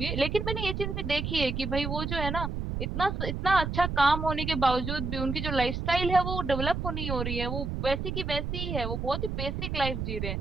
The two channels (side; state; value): right; noise; rumble, 3 dB below the sound